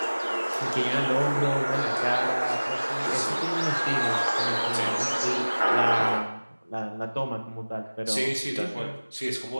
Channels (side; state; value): both; inverted; correlation -1.00